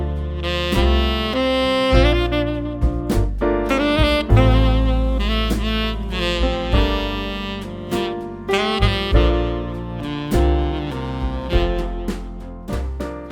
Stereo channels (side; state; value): both; identical; correlation 1.00